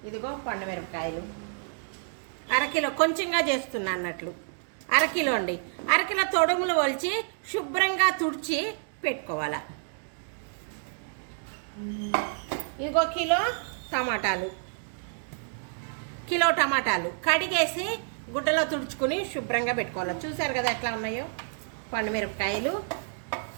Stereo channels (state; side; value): silent; left; digital silence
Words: ఇదిగో పండుమిరపకాయలు అరకిలో, కొంచెంగా చేస్తున్నా అన్నట్లు అరకిలో అండి. అరకిలో తొడుములు వలిచి శుభ్రంగా తుడిచి పెట్టుకోవాలి. ఇంకో కిలో టమాటాలు కడిగేసి గుడ్డలో తుడుచుకుని శుభ్రంగా పెట్టుకోవాలి. చూసారు కదా ఎట్లా ఉన్నాయో. పండుమిరపకాయలు